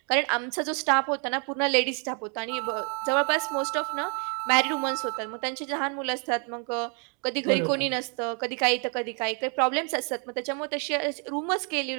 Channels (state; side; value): quieter; left; 38.8 dB